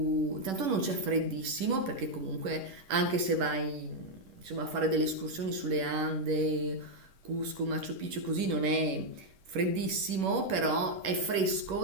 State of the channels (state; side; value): late; left; 10 ms